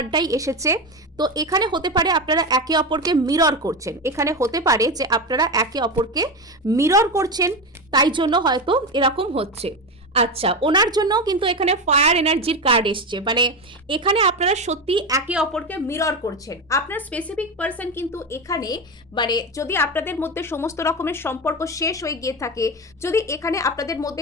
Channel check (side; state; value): both; normal; correlation 0.17